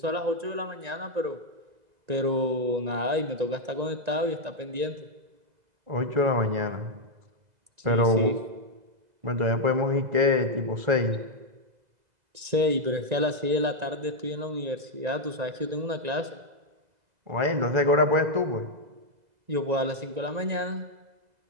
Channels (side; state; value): left; late; 1.9 ms